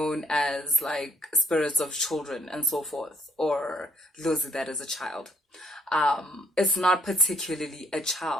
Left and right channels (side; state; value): both; normal; correlation 0.66